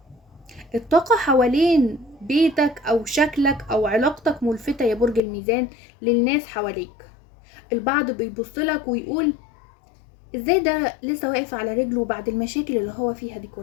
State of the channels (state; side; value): drops out; right; at 5.2 s